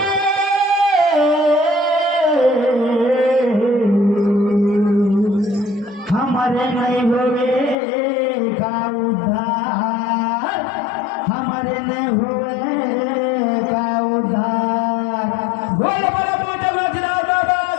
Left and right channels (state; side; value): drops out; right; at 7.8 s